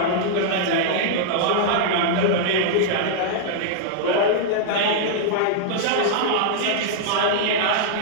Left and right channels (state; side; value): different; both; correlation -0.01